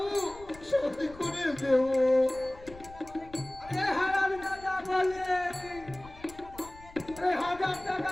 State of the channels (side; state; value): left; noise; rumble, 19 dB below the sound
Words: শোধ করে দেব। আরে হারাম দাদা বলে, আরে 1000 টাকা